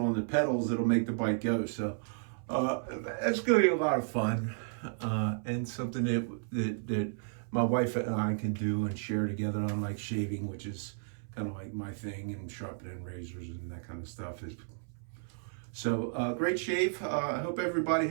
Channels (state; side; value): silent; left; 56 dB below the other